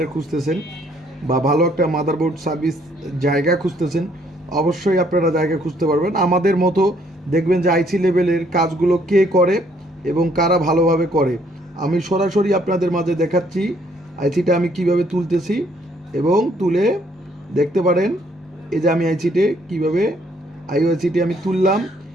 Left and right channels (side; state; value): both; normal; correlation 0.66